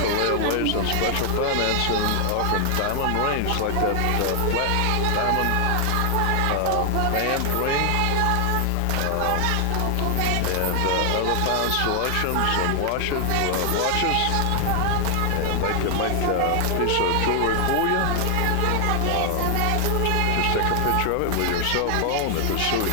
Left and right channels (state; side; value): different; both; correlation 0.00